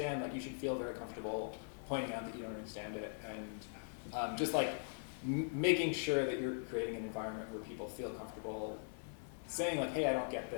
like you should feel very comfortable pointing out that you don't understand it, and just like making sure that you're creating an environment where people feel comfortable saying like, hey, I don't get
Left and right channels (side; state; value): right; silent; 50 dB below the other